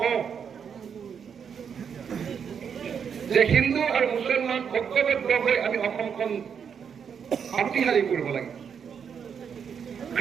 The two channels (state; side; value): quieter; left; 7.2 dB